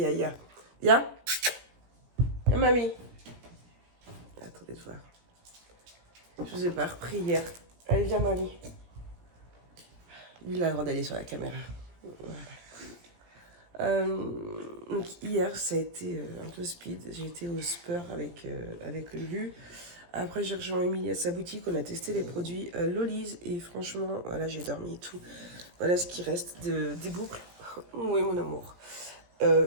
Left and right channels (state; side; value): late; left; 17 ms